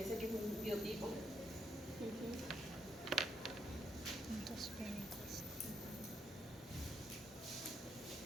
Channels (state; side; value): normal; both; correlation 0.76